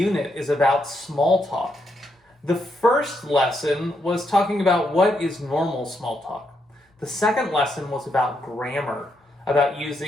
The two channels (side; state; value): both; normal; correlation 0.79